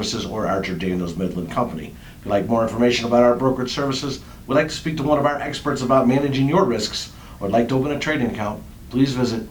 or Archer Daniels Midland Company. If you'd like more information about our brokerage services, would like to speak to one of our experts about managing your risks, or would like to open a trading account, please visit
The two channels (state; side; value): identical; both; correlation 1.00